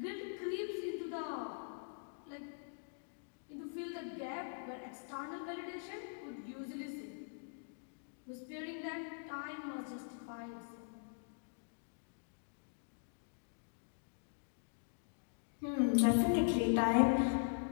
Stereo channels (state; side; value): silent; right; digital silence